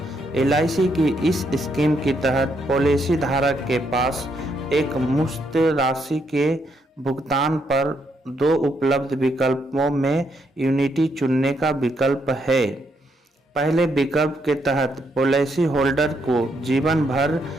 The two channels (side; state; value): both; normal; correlation 0.76